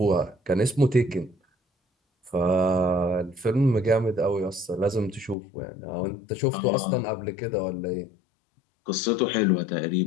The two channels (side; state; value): right; drops out; at 5.4 s